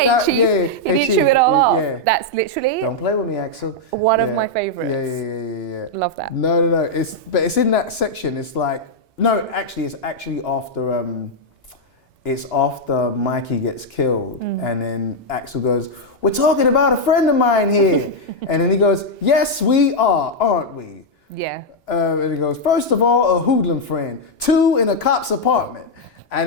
that, Chief, he didn't shove it all off. Yeah. That's literally. Don't play with me, Axel. One of my favourites. Yeah. Love that. No. It's in that section. It's like it's actually after. It's after Mikey gets killed, and then Axel goes, "We're talking about a friend of mine here," and then he goes, "Yes, we are, aren't we?" Yeah. And he goes, "First of all, a hoodlum friend. 2 in a cop's apartment."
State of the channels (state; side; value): normal; both; correlation -0.01